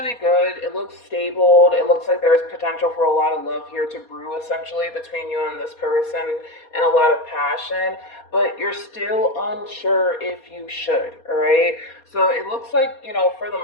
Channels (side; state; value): right; late; 4.2 ms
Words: good. It looks stable. It looks like there's potential for a lot of love here to brew, essentially, between you and this person, and a lot of passion, but you're still unsure if you should, all right? So it looks like, for the